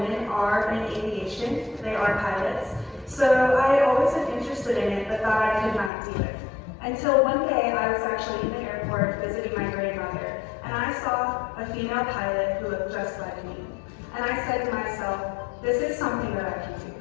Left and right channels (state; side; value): drops out; right; at 5.9 s